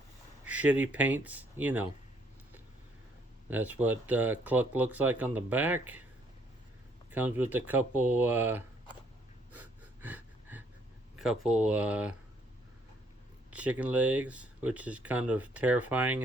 shitty paints, you know. That's what Cluck looks like on the back. Comes with a couple chicken legs, which is kind of terrifying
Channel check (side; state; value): both; normal; correlation 0.67